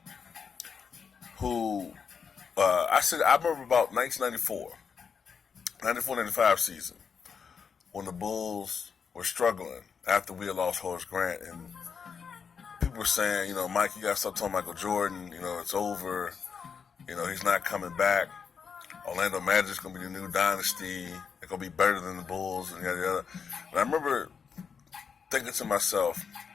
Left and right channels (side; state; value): right; quieter; 6.3 dB